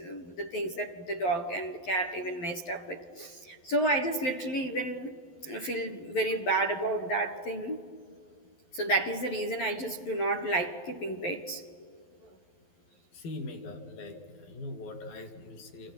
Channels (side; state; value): right; late; 12 ms